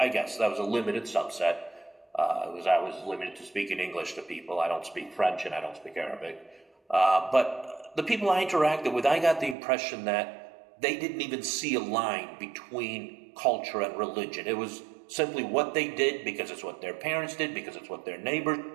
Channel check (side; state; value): left; drops out; at 9.6 s